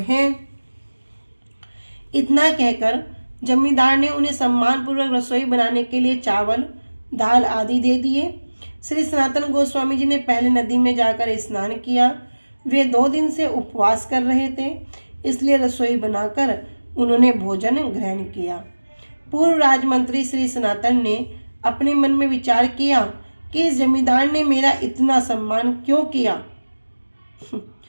इतना कहकर जमींदार ने उन्हें सम्मानपूर्वक रसोई बनाने के लिए चावल, दाल आदि दे दिए। श्री सनातन गोस्वामी जी ने पहले नदी में जाकर स्नान किया। वे 2 दिन से उपवास कर रहे थे, इसलिए रसोई बनाकर उन्होंने भोजन ग्रहण किया। पूर्व राजमंत्री श्री सनातन ने अपने मन में विचार किया कि इस जमींदार ने मेरा इतना सम्मान क्यों किया।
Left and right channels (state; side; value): inverted; both; correlation -1.00